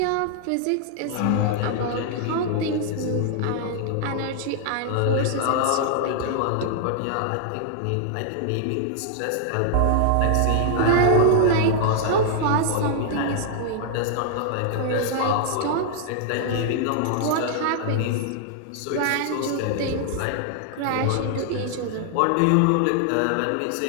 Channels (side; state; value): both; different; correlation 0.00